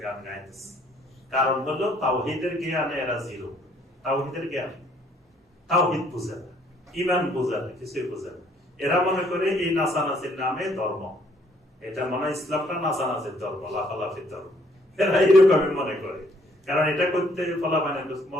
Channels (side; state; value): both; normal; correlation 0.64